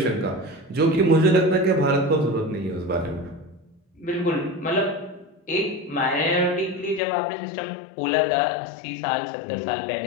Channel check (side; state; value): right; drops out; at 7.0 s